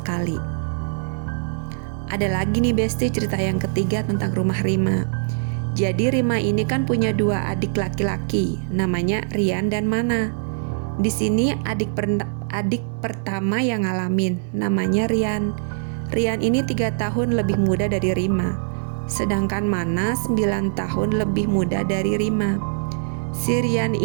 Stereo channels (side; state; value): left; silent; digital silence